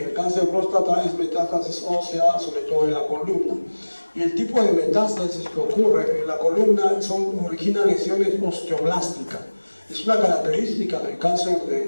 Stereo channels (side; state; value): both; inverted; correlation -1.00